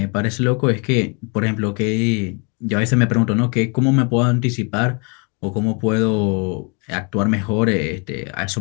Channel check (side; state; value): right; quieter; 34.3 dB